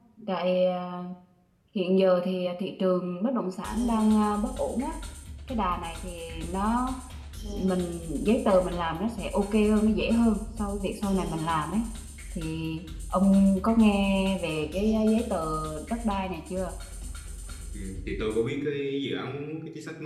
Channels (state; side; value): identical; both; correlation 1.00